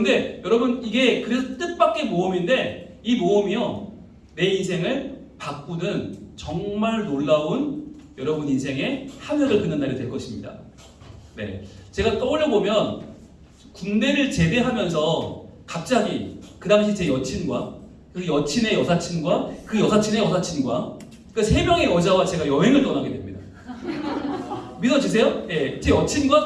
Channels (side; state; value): both; identical; correlation 1.00